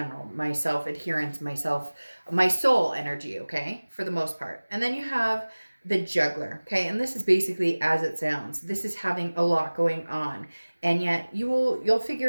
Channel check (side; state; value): both; inverted; correlation -1.00